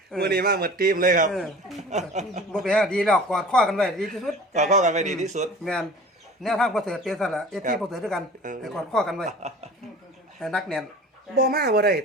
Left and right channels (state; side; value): normal; both; correlation 0.42